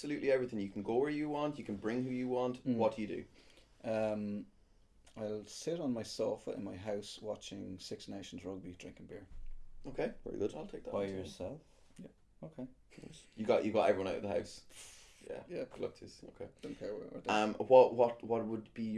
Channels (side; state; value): both; identical; correlation 1.00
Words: everything. You can go where you want. You can bring who you want. What do you do? I'll sit on my sofa in my house watching Six Nations rugby, drinking beer. Okay, very good. I'll take that. By yourself? Yeah. Okay. You got everyone out of the house. Yeah. Yeah. Good luck to you. Okay. Don't care where. What would be